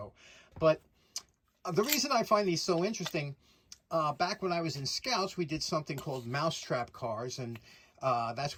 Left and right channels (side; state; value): both; identical; correlation 1.00